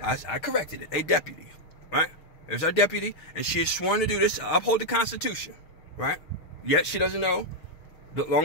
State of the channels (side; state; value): right; late; 6.4 ms